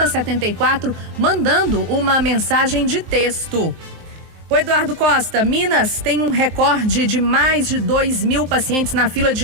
mandando uma mensagem de texto. O Eduardo Costa, Minas tem um recorde de mais de 2.000 pacientes na fila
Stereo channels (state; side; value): late; left; 23 ms